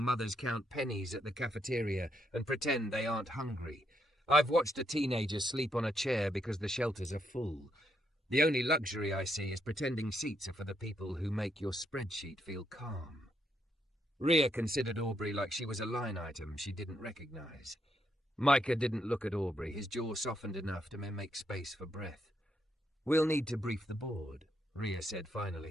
mothers count pennies at the cafeteria and pretend they aren't hungry. I've watched a teenager sleep on a chair because the shelters are full. The only luxury I see is pretending seats are for the people who make your spreadsheet feel calm. Ria considered Aubrey like she was a line item she didn't recognize. Micah didn't look at Aubrey, his jaw softened enough to make space for breath. We'll need to brief the board, Ria said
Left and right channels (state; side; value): normal; both; correlation 0.77